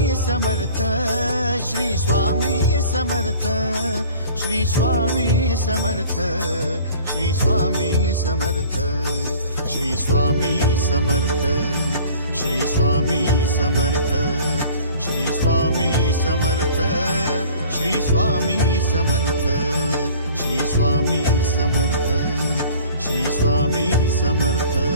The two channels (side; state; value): both; inverted; correlation -0.48